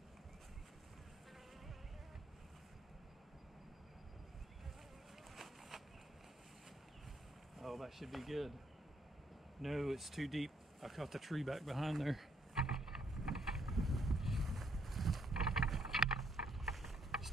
Oh, that should be good. No, it's too deep. I caught the tree back behind there.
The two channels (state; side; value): normal; both; correlation 0.71